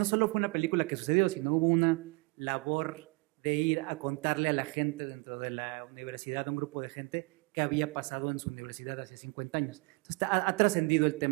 solo fue una película que sucedió, sino hubo una labor de ir a contarle a la gente dentro de la universidad, a un grupo de gente, qué había pasado en su universidad hace 50 años. Entonces ha trascendido el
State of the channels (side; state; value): left; quieter; 28.0 dB